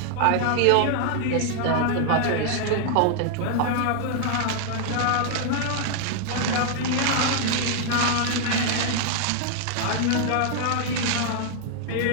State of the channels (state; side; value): different; both; correlation 0.00